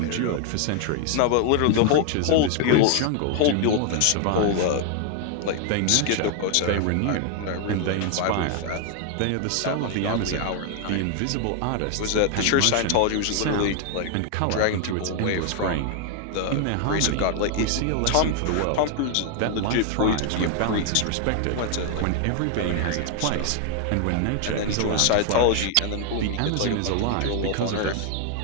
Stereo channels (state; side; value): different; both; correlation 0.00